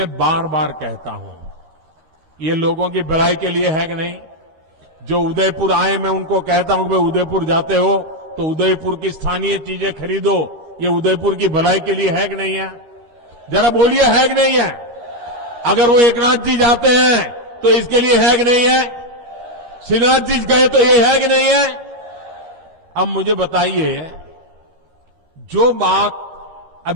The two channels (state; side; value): late; left; 13 ms